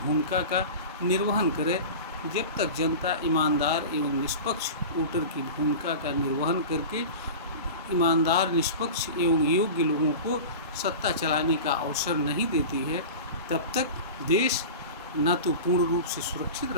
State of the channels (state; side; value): inverted; both; correlation -0.31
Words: का निर्वहन करे। जब तक जनता ईमानदार एवं निष्पक्ष वोटर की भूमिका का निर्वहन करके ईमानदार, निष्पक्ष एवं योग्य लोगों को सत्ता चलाने का अवसर नहीं देती है, तब तक देश न तो पूर्ण रूप से सुरक्षित